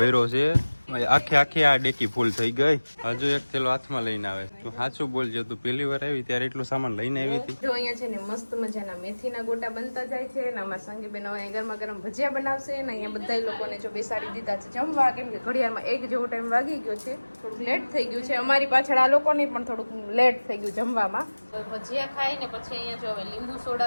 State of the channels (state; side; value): inverted; both; correlation -1.00